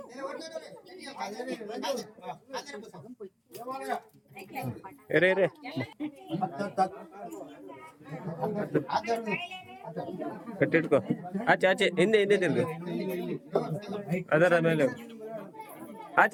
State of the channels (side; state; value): both; identical; correlation 1.00